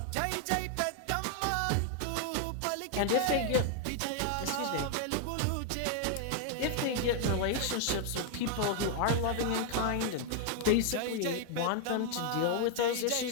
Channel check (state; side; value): different; both; correlation 0.00